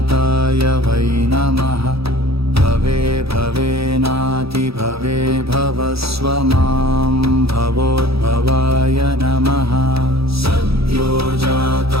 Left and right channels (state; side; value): late; left; 0.77 ms